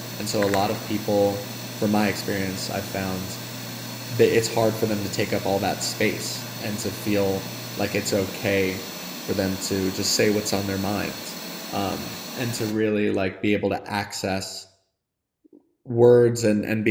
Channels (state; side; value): identical; both; correlation 1.00